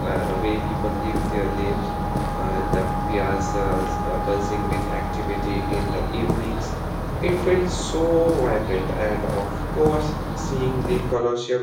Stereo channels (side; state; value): both; identical; correlation 1.00